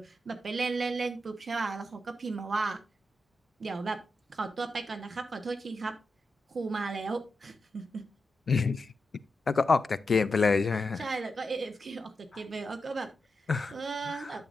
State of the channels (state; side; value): normal; both; correlation 0.88